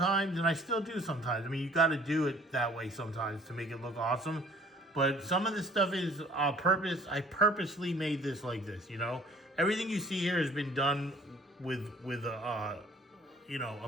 and I still do sometimes. I mean, you got to do it that way sometimes to make it look awesome. But some of this stuff is purpose. I purposely made this like this, you know. Everything you see here has been done with you know, a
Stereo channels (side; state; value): both; normal; correlation 0.53